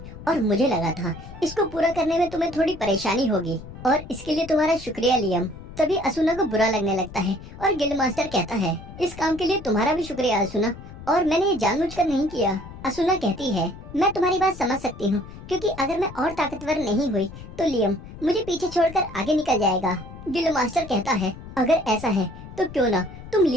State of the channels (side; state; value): left; noise; rumble, 14 dB below the sound